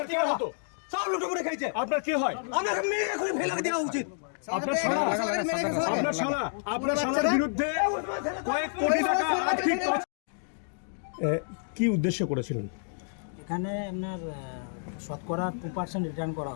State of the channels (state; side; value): silent; right; digital silence